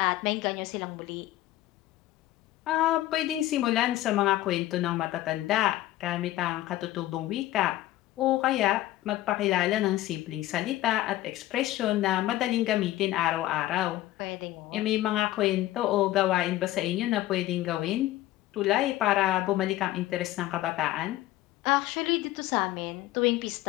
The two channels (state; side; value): quieter; right; 15.5 dB